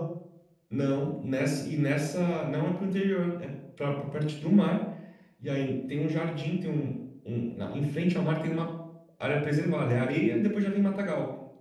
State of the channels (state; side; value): identical; both; correlation 1.00